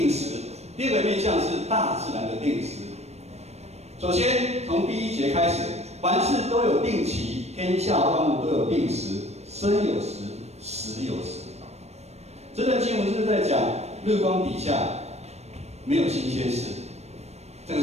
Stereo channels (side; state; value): left; late; 0.31 ms